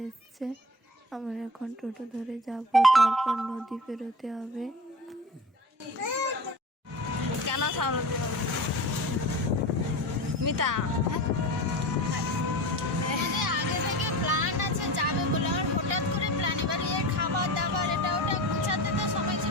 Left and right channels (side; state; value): both; normal; correlation 0.33